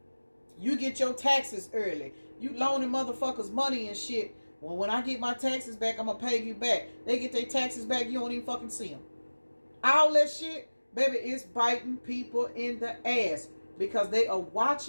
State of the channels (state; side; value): inverted; both; correlation -1.00